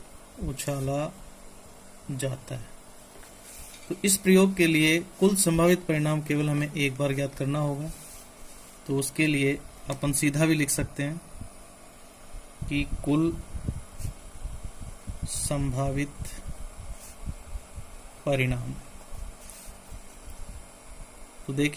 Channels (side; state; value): both; identical; correlation 1.00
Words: उछाला जाता है, तो इस प्रयोग के लिए कुल संभावित परिणाम केवल हमें एक बार ज्ञात करना होगा। तो उसके लिए अपन सीधा भी लिख सकते हैं कि कुल संभावित परिणाम। तो